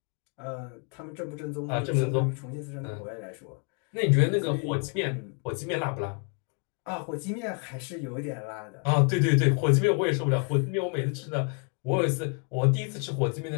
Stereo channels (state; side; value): quieter; right; 39.4 dB